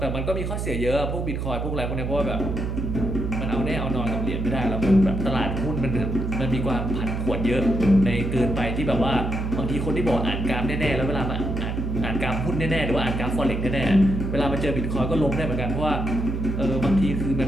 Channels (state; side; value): noise; right; hum, 2 dB below the sound